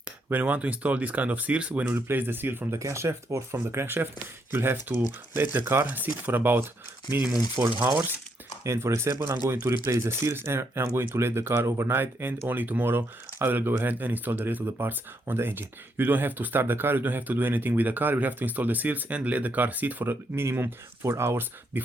When you want to install this kind of seals, when you replace the seal from the camshaft or from the crankshaft, you'll have to let the car sit for about minimum 4 hours. And for example, I'm going to replace the seals and I'm going to let the car overnight, and only tomorrow I will go ahead and install the rest of the parts on the engine. You don't have to start the car, you don't have to do anything with the car, you have to install the seals and let the car sit for a minimum 4 hours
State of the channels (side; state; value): both; normal; correlation 0.76